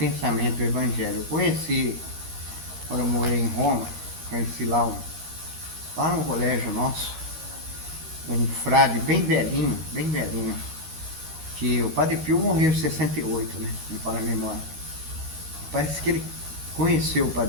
o Evangelho. Eu conheci, quando eu morei em Roma, conheci lá no colégio nosso, um frade bem velhinho, que o Padre Pio morreu em 68, né? Me fala a memória. Parece que ele conheceu o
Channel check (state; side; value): late; left; 13 ms